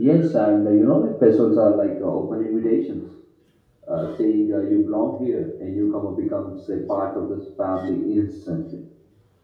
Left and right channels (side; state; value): both; identical; correlation 1.00